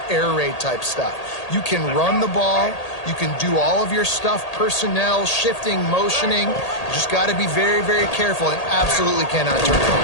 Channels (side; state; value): right; late; 1.8 ms